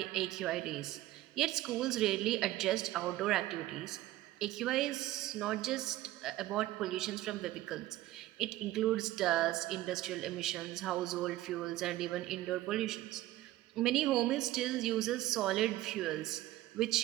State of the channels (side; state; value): left; quieter; 15.9 dB